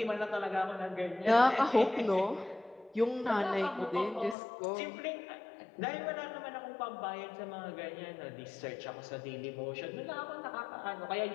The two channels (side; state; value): right; drops out; at 4.4 s